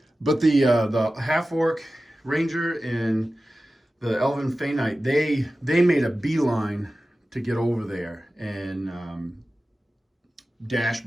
the half-orc ranger and the elven Fey Knight, they made a beeline to get over there and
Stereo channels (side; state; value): both; normal; correlation 0.95